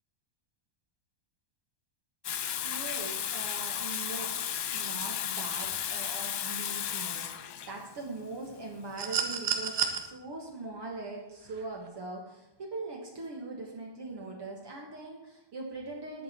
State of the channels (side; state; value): left; late; 1.2 ms